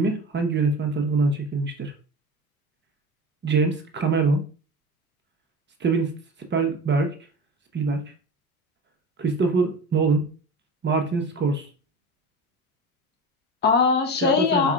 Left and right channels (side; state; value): both; normal; correlation 0.29